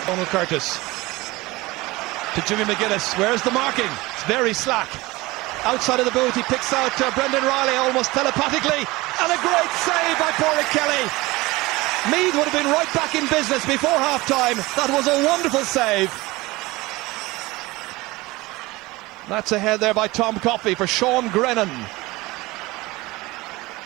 Donald Curtis. To Jimmy McGuinness. Where's the marking? It's very slack. Outside of the boot, he picks out Brendan Riley almost telepathically. And a great save by Pádraig Kelly. Meath would have been right back in business before half-time. That was a wonderful save. That's ahead there by Tom Coffey for Sean Grennan.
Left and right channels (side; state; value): left; quieter; 21.2 dB